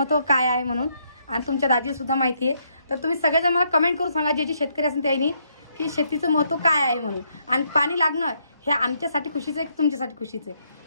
काय आहे म्हणून, आणि तुमच्या दाजीसुद्धा माहिती आहे. तर तुम्ही सगळेजण मला कमेंट करून सांगा, जे जे शेतकरी असेल त्यांनी, की शेतीचं महत्त्व काय आहे म्हणून. आणि पाणी लागणं हे आमच्यासाठी खुशीचं आहे की तुमच्यासाठी खुशीचं आहे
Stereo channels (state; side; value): inverted; both; correlation -0.74